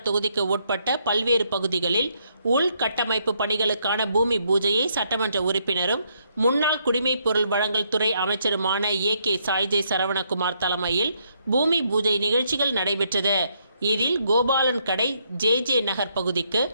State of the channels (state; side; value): inverted; both; correlation -0.74